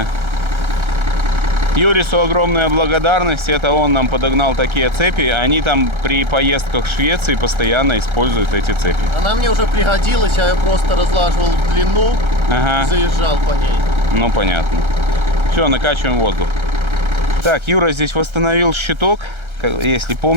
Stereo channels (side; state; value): left; late; 1.3 ms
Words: Юрису огромная благодарность, это он нам подогнал такие цепи. Они там при поездках в Швеции постоянно используют эти цепи. Она мне уже пригодилась, я ее просто разлаживал в длину и заезжал по ней. Ну, понятно. Все, накачиваем воздух. Так, Юра здесь восстановил щиток. Если